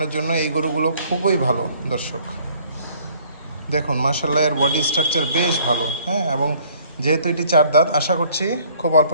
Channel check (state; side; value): inverted; both; correlation -0.58